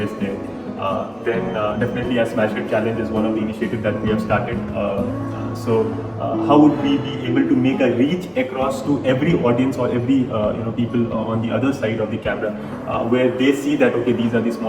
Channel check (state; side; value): identical; both; correlation 1.00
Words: there? Then definitely as SmasHit Challenge is one of the initiatives that we have started. How would we be able to make a reach across to every audience or every people on the other side of the camera, where they see that okay, these are the